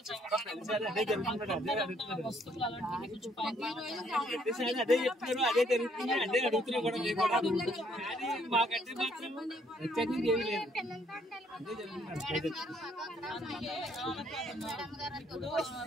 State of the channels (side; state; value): both; normal; correlation 0.67